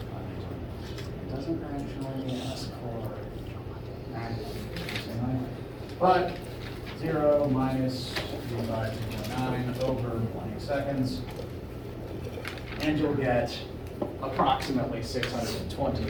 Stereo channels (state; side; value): identical; both; correlation 1.00